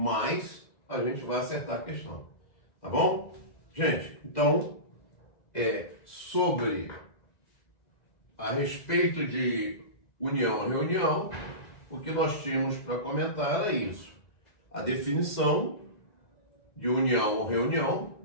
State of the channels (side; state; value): right; late; 1.9 ms